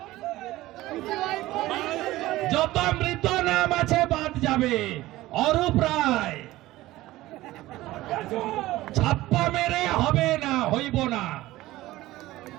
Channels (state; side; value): quieter; left; 17.1 dB